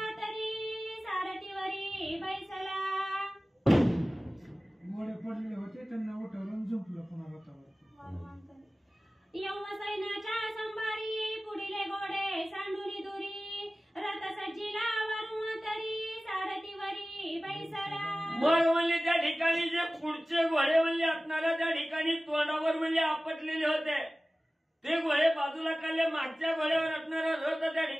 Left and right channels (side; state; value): both; normal; correlation 0.97